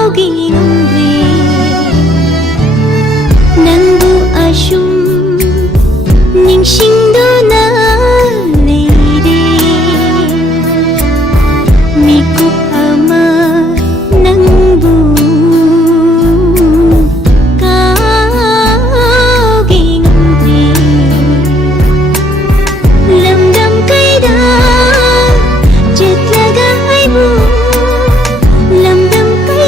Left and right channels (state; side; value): normal; both; correlation 0.68